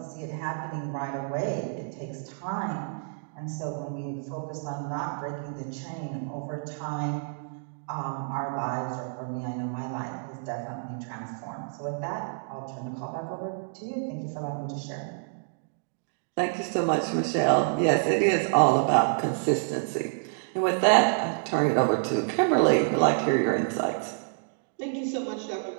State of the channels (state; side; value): silent; left; digital silence